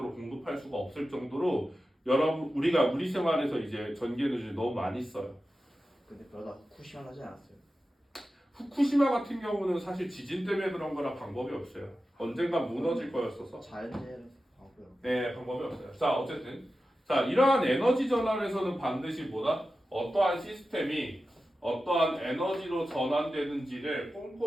공급할 수가 없을 정도로 우리가 우리 생활에서 이제 전기 에너지를 너무 많이 써요. 근데 그러다 후쿠시마 나지 않았어요? 후쿠시마 같은 경우는 사실 지진 때문에 그런 거라 방법이 없어요. 언젠가 무너질 거였어서. 자연재해라서 하고요. 네, 방법이 없어요. 자, 어쨌든 자, 이러한 에너지 전환에서는 반드시 뭐다? 어떠한 시스템이 어떠한 에너지로 전환되는지를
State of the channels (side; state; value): both; normal; correlation 0.93